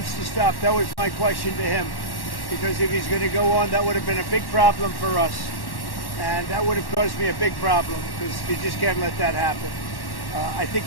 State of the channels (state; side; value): late; right; 1.1 ms